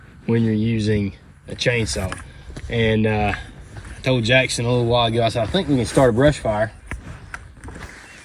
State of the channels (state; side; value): identical; both; correlation 1.00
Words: when you're using a chainsaw. And I told Jackson a little while ago, I said, I think we can start a brush fire,